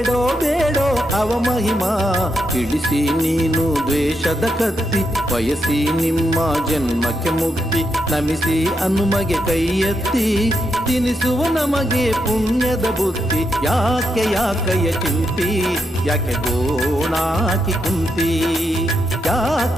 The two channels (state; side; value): normal; both; correlation 0.82